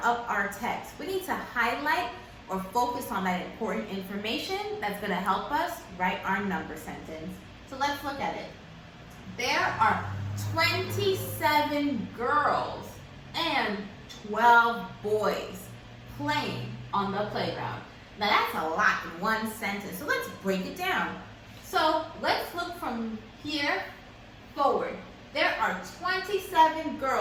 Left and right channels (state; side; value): identical; both; correlation 1.00